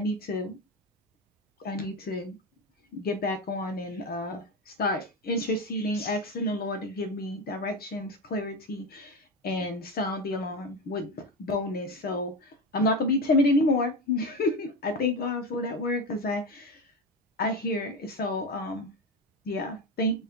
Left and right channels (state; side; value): normal; both; correlation 0.19